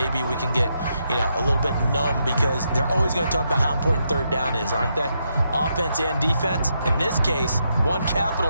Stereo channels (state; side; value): inverted; both; correlation -0.80